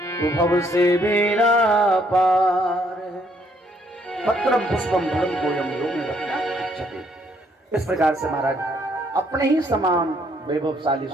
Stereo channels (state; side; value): normal; both; correlation 0.68